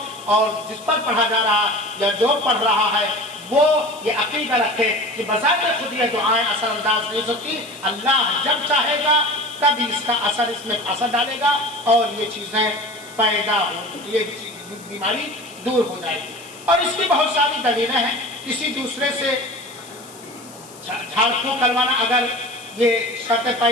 اور جس پر پڑھا جا رہا یا جو پڑھ رہا ہے وہ یہ عقیدہ رکھے کہ بذات خود یہ دعائیں اثر انداز نہیں ہوتی، اللہ جب چاہے گا تب اس کا اثر اس میں اثر ڈالے گا اور یہ چیزیں پیدا ہو، یہ بیماری دور ہو جائے گی۔ اور اس کی بہت ساری دلیلیں ہیں۔ کسی دوسرے سے جھاڑ پھونک کروانا اگر یہ شرطیں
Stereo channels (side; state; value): left; noise; hiss, 20 dB below the sound